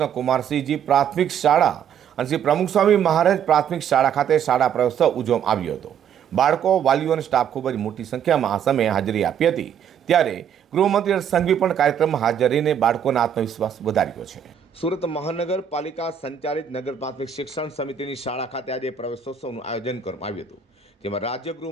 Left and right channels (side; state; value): left; quieter; 8.3 dB